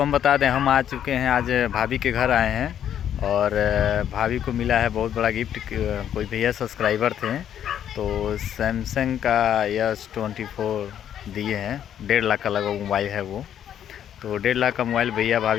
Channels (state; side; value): quieter; right; 9.9 dB